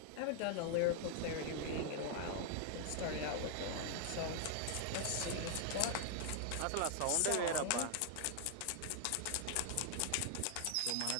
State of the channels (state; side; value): different; both; correlation 0.00